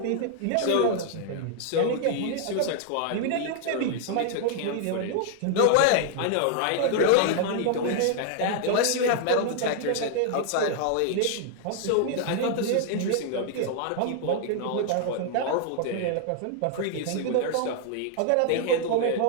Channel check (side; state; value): both; different; correlation 0.00